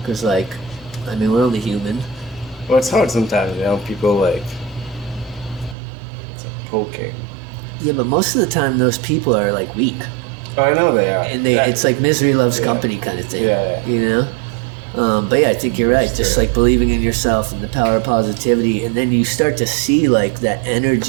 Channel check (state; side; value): drops out; left; at 5.8 s